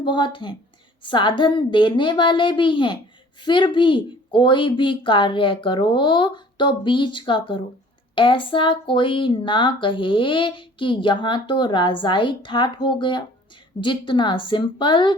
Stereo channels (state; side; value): normal; both; correlation 0.51